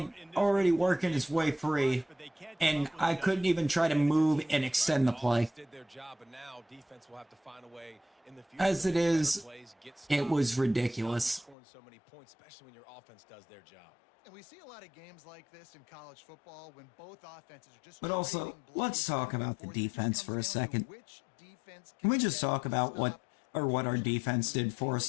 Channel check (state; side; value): drops out; right; at 11.6 s